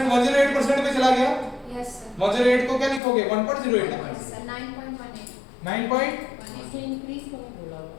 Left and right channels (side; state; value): right; drops out; at 3.0 s